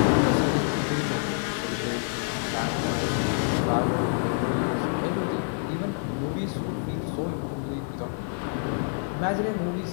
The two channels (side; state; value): right; silent; 60 dB below the other